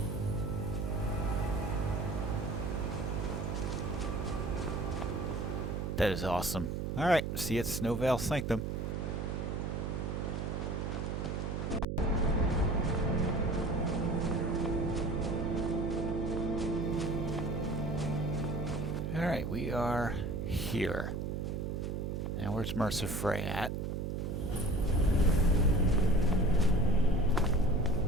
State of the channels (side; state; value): right; noise; hum, 2 dB below the sound